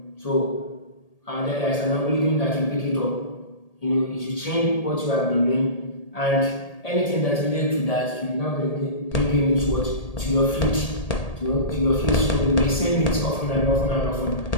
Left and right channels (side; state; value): right; late; 1.8 ms